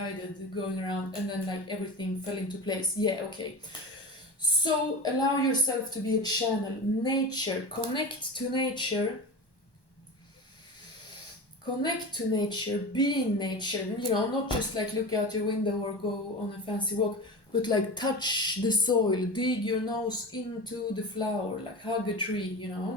going around, and then like everything fell into place. Yeah, okay. So allow yourself to be a channel. Nature, connect to nature. Connect to nature, be in nature, you know, not just like look out your window or go on a fancy walk, but like touch the soil, dig your nose into the flower, like hug a tree, you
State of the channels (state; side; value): late; right; 1.1 ms